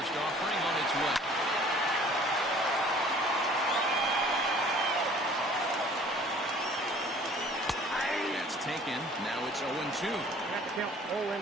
offering on its way. That's taken. Now it's 0-2. Have to count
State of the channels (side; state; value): both; normal; correlation 0.51